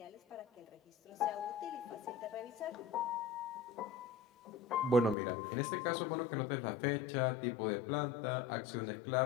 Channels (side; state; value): right; drops out; at 5.2 s